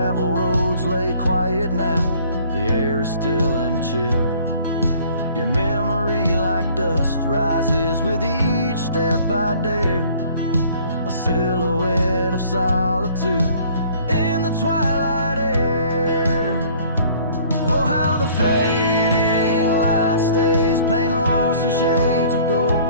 roads lay quiet now, the air is still and chill. Your memory like dust rises with each step I dare, a silhouette of solitude in the twilight air. Oh, how the fading light stays, paint lost in shades of gold,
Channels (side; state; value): both; inverted; correlation -0.54